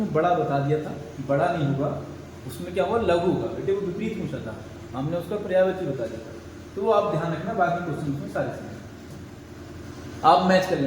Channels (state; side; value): identical; both; correlation 1.00